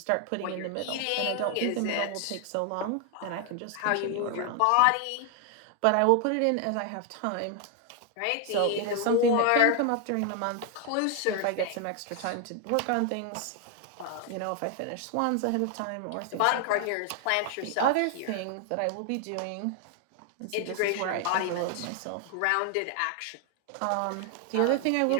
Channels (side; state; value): both; different; correlation 0.00